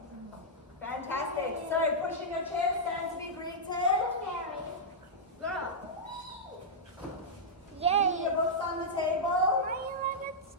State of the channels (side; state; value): both; normal; correlation -0.09